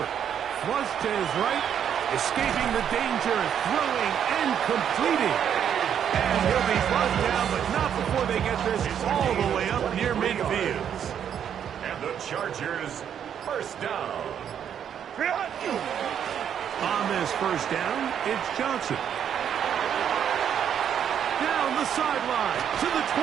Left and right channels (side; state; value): left; quieter; 8.8 dB